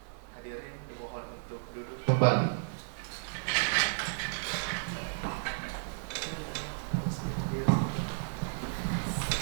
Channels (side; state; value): left; silent; digital silence